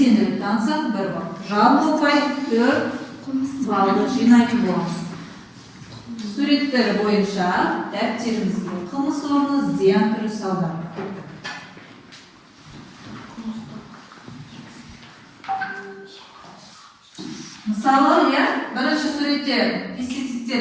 танысақ 1 балл. Жалпы ұпай 4 баллды жинайтын боламыз. Суреттер бойынша дәптерімізге қылмыс орны, зиян түрі, салдар. Мысалы, бірінші суретте пестицидтер,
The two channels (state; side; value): identical; both; correlation 1.00